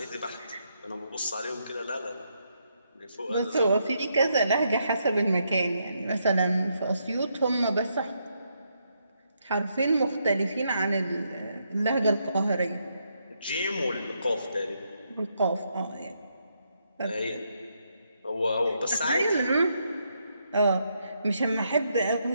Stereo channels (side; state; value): both; inverted; correlation -0.78